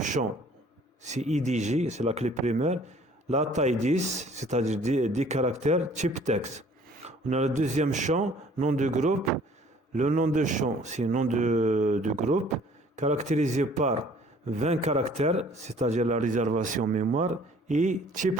c'est IDG, c'est la clé primaire. La taille 10, c'est-à-dire 10 caractères, type texte. On a le deuxième champ, nom de groupe. Le nom de champ, c'est nom de groupe, caractérisé par 20 caractères, c'est-à-dire la réservation mémoire, et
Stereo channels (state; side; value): normal; both; correlation 0.54